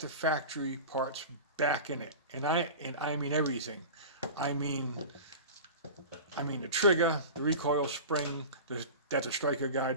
factory parts, back in it. And I mean everything. I mean the trigger, the recoil spring, that's a striker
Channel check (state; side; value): inverted; both; correlation -0.32